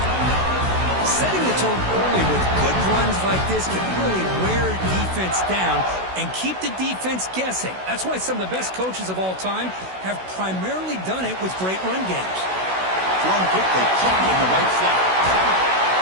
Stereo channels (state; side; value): late; left; 16 ms